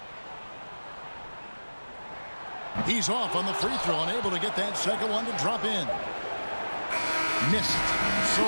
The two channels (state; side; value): inverted; both; correlation -1.00